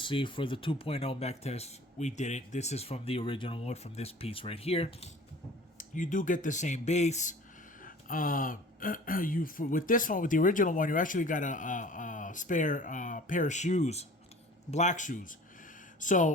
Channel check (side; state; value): both; normal; correlation 0.45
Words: for the 2.0 mech test, we didn't. This is from the original one, from this piece right here. You do get the same base. With this one, with the original one, you actually got a spare pair of shoes, black shoes.